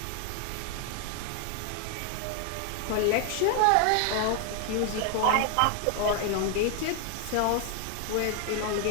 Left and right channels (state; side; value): different; both; correlation 0.00